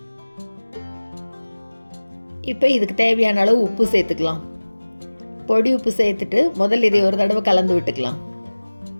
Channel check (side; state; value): both; inverted; correlation -1.00